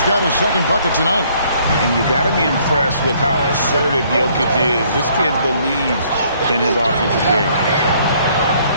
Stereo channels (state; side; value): inverted; both; correlation -0.63